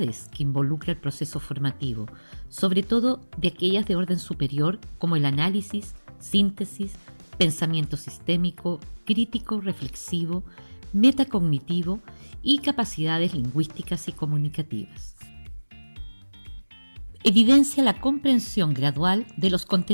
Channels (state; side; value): inverted; both; correlation -1.00